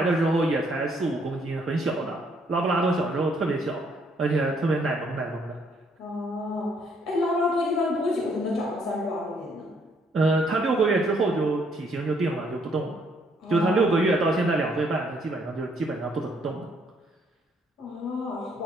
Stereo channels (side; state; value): both; normal; correlation 0.68